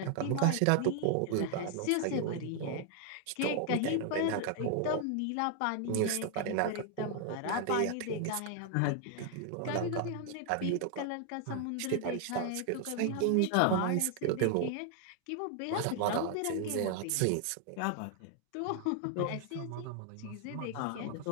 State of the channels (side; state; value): both; different; correlation 0.00